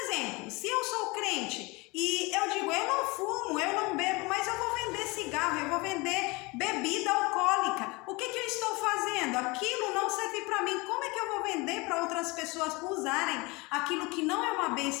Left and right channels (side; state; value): right; quieter; 25.3 dB